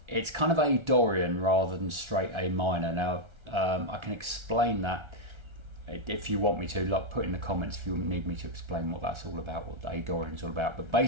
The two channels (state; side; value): late; left; 1.3 ms